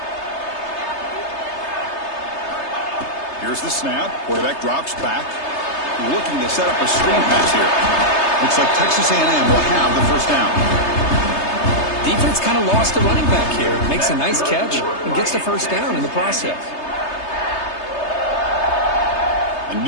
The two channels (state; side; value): late; right; 3.3 ms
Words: Here's the snap. Quarterback drops back. Looking to set up a screen pass here. Looks like Texas A&M will have the first down. Defense kind of lost the running back here. Makes a nice catch and gets the first down in the process. A